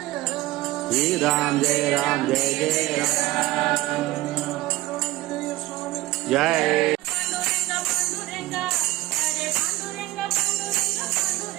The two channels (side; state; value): left; quieter; 17.8 dB